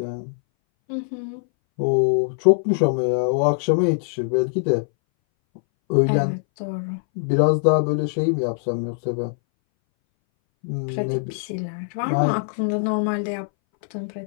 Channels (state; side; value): silent; right; 61 dB below the other